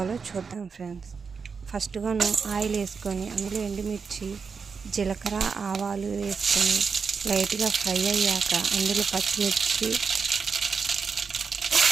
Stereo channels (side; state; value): left; quieter; 5.5 dB